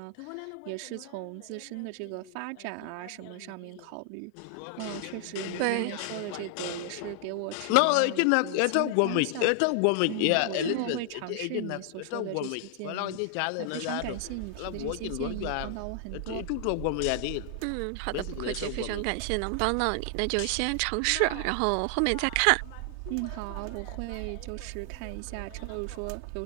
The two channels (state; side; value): different; both; correlation 0.00